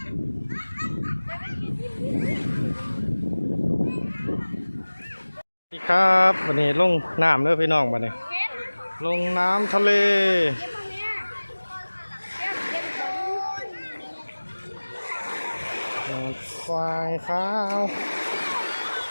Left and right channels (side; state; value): both; inverted; correlation -1.00